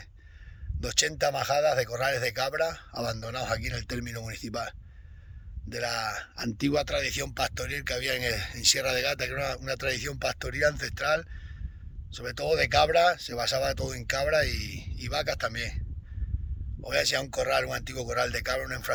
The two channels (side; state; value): both; identical; correlation 1.00